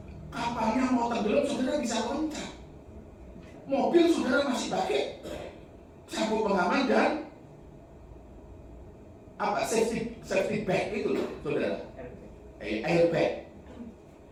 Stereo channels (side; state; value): both; identical; correlation 1.00